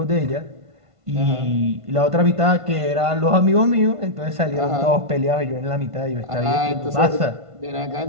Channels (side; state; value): left; late; 1.5 ms